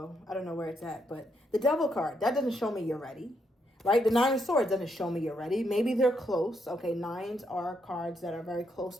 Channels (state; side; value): normal; both; correlation 0.77